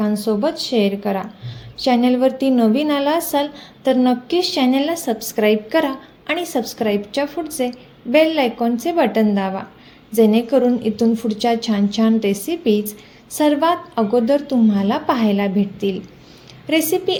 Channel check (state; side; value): identical; both; correlation 1.00